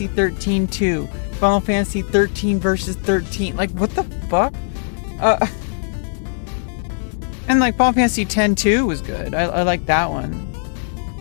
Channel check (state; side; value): silent; right; digital silence